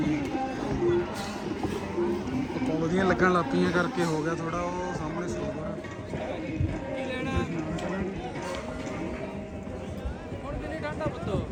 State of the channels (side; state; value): both; identical; correlation 1.00